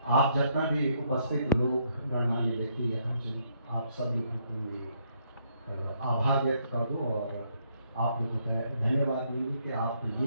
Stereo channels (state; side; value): inverted; both; correlation -0.72